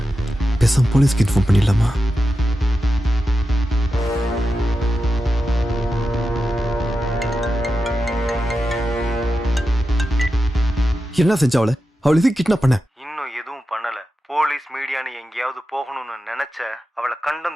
பேசாம போலீஸ்க்கு இன்ஃபார்ம் பண்ணிடலாமா என்ன செஞ்ச அவளை இது கிட்னாப் பண்ண இன்னும் எதுவும் பண்ணல போலீஸ் மீடியான்னு எங்கேயாவது போகணும்னு நினைச்ச அவளை கண்டம்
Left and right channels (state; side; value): normal; both; correlation 0.90